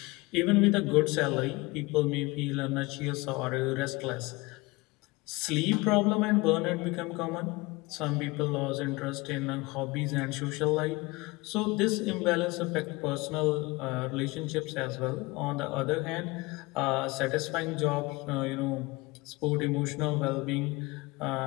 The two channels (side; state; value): right; quieter; 23.5 dB